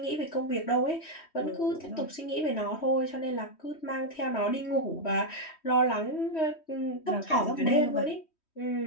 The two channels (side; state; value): right; late; 3.1 ms